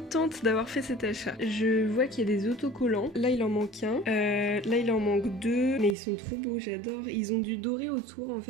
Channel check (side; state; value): left; drops out; at 6.0 s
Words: d'avoir fait cet achat. Je vois qu'il y a des autocollants. Là il en manque un. Là il en manque deux. Mais ils sont trop beaux, j'adore. Ils ont du doré autour en